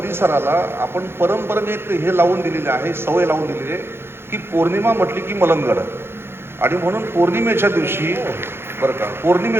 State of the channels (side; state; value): left; late; 0.11 ms